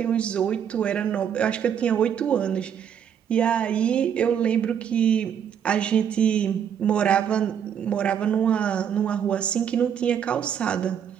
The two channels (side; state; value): left; quieter; 8.5 dB